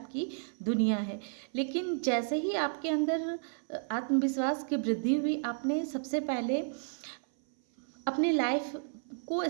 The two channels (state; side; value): silent; left; 56 dB below the other